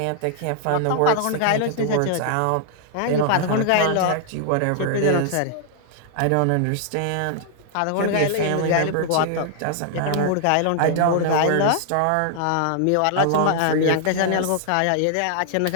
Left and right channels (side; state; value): both; different; correlation -0.01